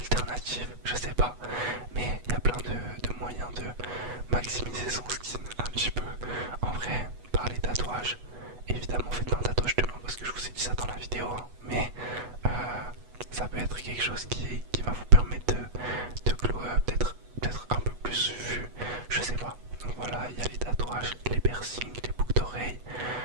je sais pas, mais il y a plein de moyens de maximiser son skin un petit peu. En vrai, par les tatouages, évidemment faites pas un tatouage demain parce que je vous ai dit ça dans la vidéo, hein, mais ça peut être quelque chose qui va vous permettre de glow up, d'être un peu plus vu, je sais pas. Donc voilà, il y a les tatouages, les piercings, les boucles d'oreilles.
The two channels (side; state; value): left; late; 8.2 ms